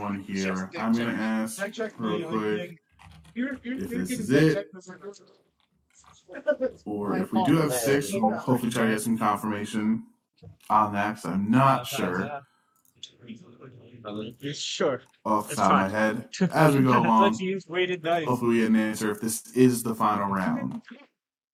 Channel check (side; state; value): both; identical; correlation 1.00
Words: here. I'm gonna ask real quick if this is it, or if we do have 6, we'll hopefully try to get some confirmation on that, because I'm not sure Sure. off the It's top of my fine. head as we go along. Let's use weighted dice. Hopefully we get an answer if this is the final round